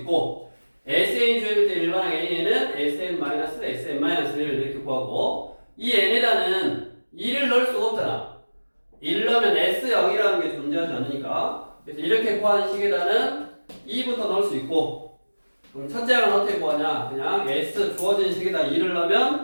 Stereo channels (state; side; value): inverted; both; correlation -1.00